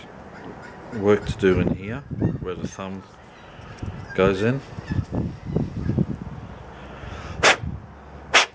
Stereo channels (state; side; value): identical; both; correlation 1.00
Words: work to do in here where the thumb goes in.